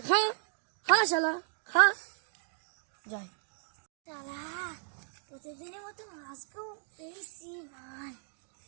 খা খা শালা, খা। যাই শালা প্রতিদিনের মতো আজকেও পেয়েছি মাল।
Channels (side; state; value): left; silent; digital silence